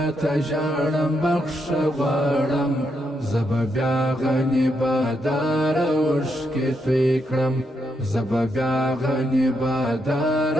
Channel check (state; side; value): normal; both; correlation 0.80